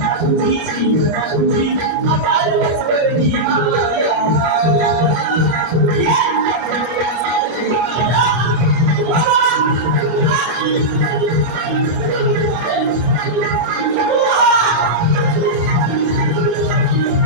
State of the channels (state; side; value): late; left; 26 ms